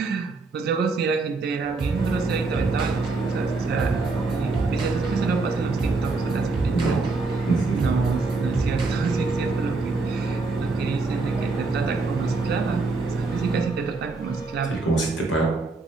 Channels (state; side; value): quieter; left; 3.7 dB